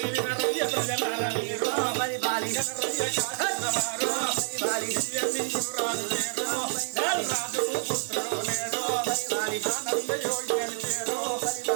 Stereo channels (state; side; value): silent; left; 59 dB below the other